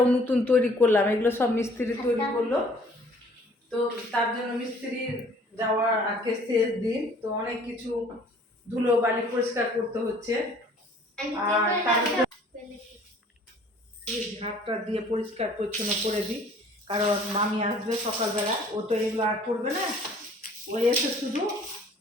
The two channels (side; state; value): both; normal; correlation 0.54